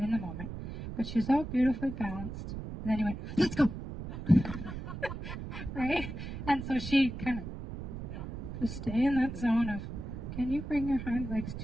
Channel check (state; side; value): noise; right; rumble, 8 dB below the sound